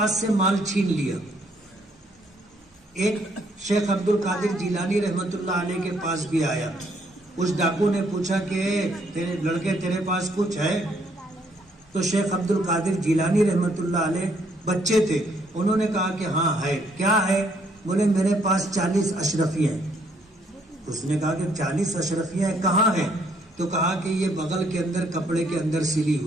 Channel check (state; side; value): normal; both; correlation 0.69